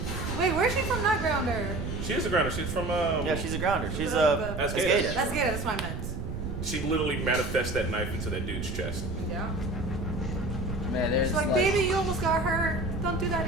Wait, where's she from? Not grounder. She is a grounder. She's from Yeah, she's a grounder. She's The- a That's skater. good. That's good. That's what I meant. She literally manifests that knife into that dude's chest. Yeah. Man, there's She's like, baby, you almost got hurt. Don't do that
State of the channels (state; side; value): noise; right; rumble, 6 dB below the sound